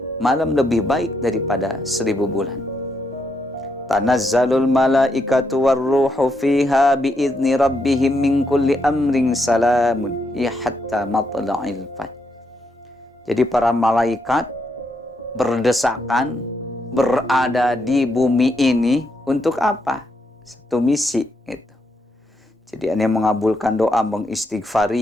malam lebih baik daripada 1000 bulan. Tanazzalul malaikatu warruhu fiha biizni rabbihim min kulli amrin salamun ya hatta matla'il fajr. Jadi para malaikat berdesakan berada di bumi ini untuk apa? Satu misi gitu. Jadi ini mengabulkan doa,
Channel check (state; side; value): normal; both; correlation 0.79